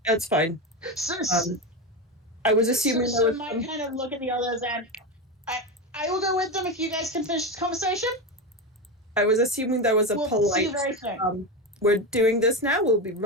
That's fine. I was assuming so might kind of look at the others and I will go with them if you guys can finish this conversation. I was assuming there was a polite. See you very soon. We're doing this now. We'll be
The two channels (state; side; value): normal; both; correlation 0.17